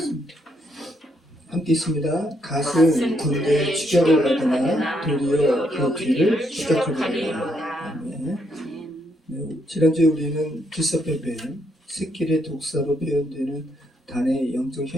함께 있습니다. 갓은 군대의 추격을 받으나 도리어 그 뒤를 추격하리라. 아멘. 네, 지난주에 우리는 기섭배뱀, 새끼의 독사로 표현되는 단의 영적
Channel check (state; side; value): normal; both; correlation 0.75